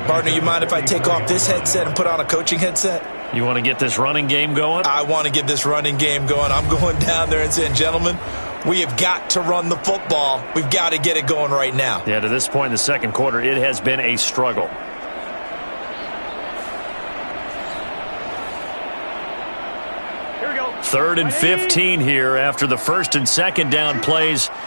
Partner, you mind if I take off this headset and put on a coaching headset? You want to get this running game going? I want to get this running game going. I'm going down there and saying, gentlemen, we have got to run the football. We've got to get it going right now. Yeah, to this point in the second quarter, it has been a struggle. Here we go. 3rd and 15 here after the 1st and 2nd down plays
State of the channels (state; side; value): inverted; both; correlation -1.00